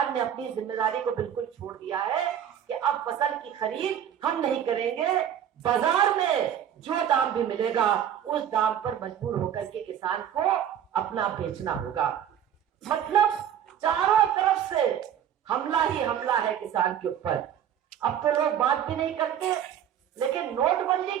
ने अपनी जिम्मेदारी को बिल्कुल छोड़ दिया है कि अब फसल की खरीद हम नहीं करेंगे, बाजार में जो दाम भी मिलेगा उस दाम पर मजबूर होकर के किसान को अपना बेचना होगा। मतलब चारों तरफ से हमला ही हमला है किसान के ऊपर। अब तो लोग बात भी नहीं करते, लेकिन नोटबंदी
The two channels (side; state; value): left; quieter; 9.7 dB